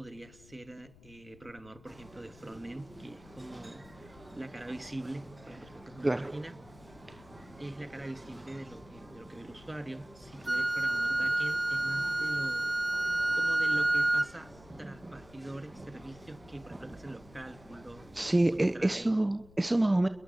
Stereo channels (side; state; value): left; noise; rumble, 23 dB below the sound